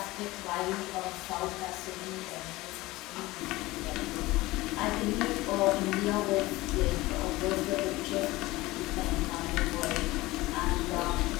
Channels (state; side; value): quieter; right; 19.6 dB